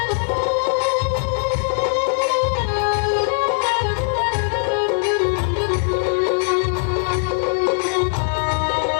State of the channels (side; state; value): right; silent; 57 dB below the other